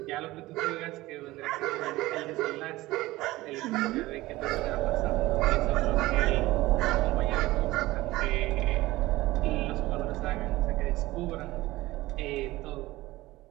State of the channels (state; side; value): quieter; left; 18.4 dB